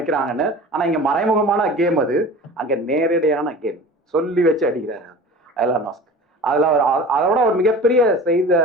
ஆனா இங்க மறைமுகமான கேம், அது அங்க நேரடியான கேம். சொல்லி வச்சு அடிக்கிறாரு எலான் மஸ்க். அதுல அதோட ஒரு மிகப்பெரிய செய்த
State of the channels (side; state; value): both; normal; correlation 0.38